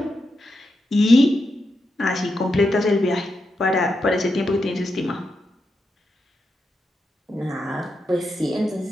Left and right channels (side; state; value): both; normal; correlation 0.86